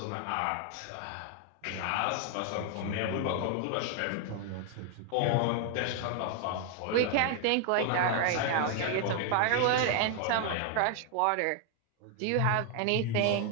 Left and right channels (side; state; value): both; different; correlation 0.00